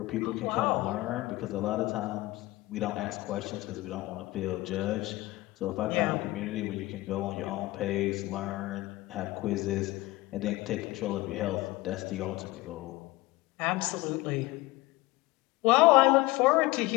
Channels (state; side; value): quieter; right; 19.8 dB